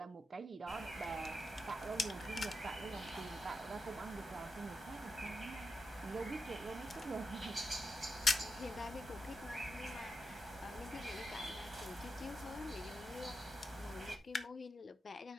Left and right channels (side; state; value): both; normal; correlation 0.88